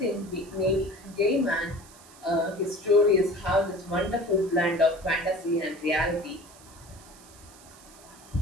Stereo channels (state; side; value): noise; right; hiss, 22 dB below the sound